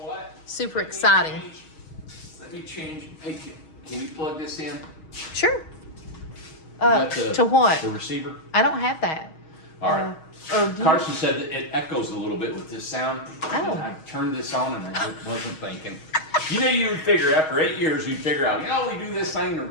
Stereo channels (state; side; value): late; right; 6.3 ms